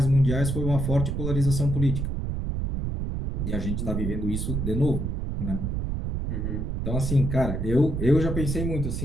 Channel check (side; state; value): right; noise; rumble, 2 dB below the sound